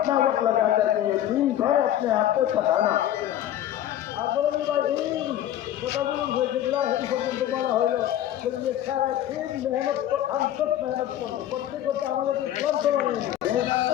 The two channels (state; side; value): quieter; right; 12.0 dB